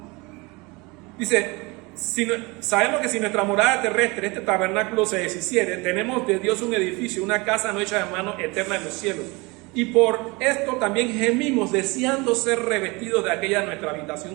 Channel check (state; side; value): quieter; left; 25.7 dB